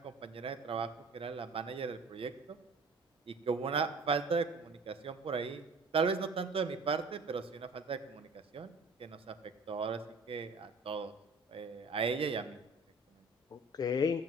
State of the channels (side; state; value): left; quieter; 3.0 dB